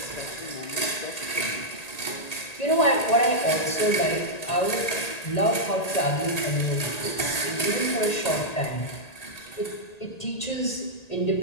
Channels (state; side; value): late; right; 1.9 ms